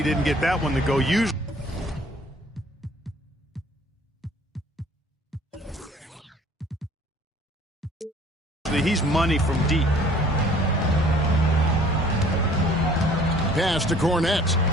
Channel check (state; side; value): normal; both; correlation 0.54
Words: didn't get that one to go. Usually he's money from deep. Pass to Cornette.